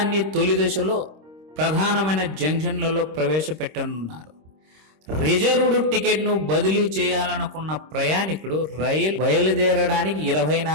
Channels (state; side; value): late; left; 26 ms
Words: తొలి దశలో ప్రధానమైన జంక్షన్లలో ప్రవేశపెట్టనున్నారు. రిజర్వ్డ్ టికెట్ను బదిలీ చేయాలనుకున్న ప్రయాణికుడు రైలు బయలుదేరడానికి